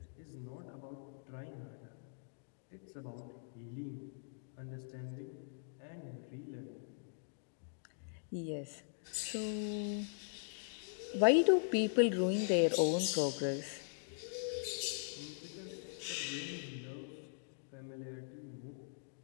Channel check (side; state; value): right; silent; digital silence